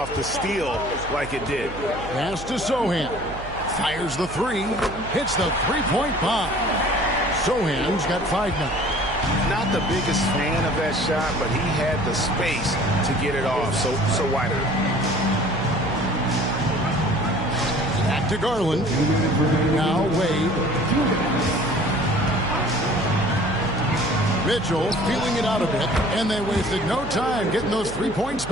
the steal like it did. Pass to Sohan. Fires the 3. Hits the three-point bomb. Sohan's got 5 now. Not the biggest fan of that shot, but he had the space to get it off. So wider. Back to Garland. Now Wade. Mitchell feeling it out a bit, and they wasted no time getting those 3 points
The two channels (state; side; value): noise; right; hum, 13 dB below the sound